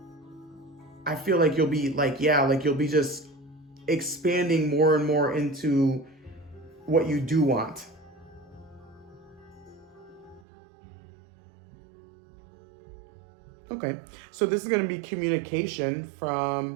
you'll be like, you'll be just expanding more and more into what you do want. Okay, so this is going to be communication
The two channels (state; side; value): drops out; left; at 10.4 s